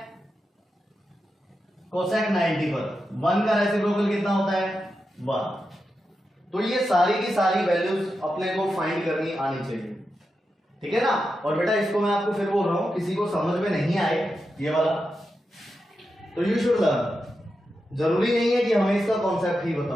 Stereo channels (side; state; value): both; normal; correlation 0.88